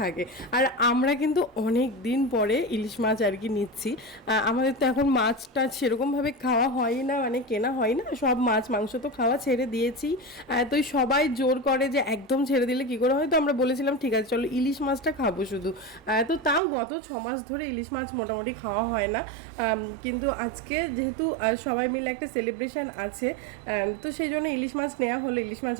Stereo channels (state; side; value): drops out; left; at 16.6 s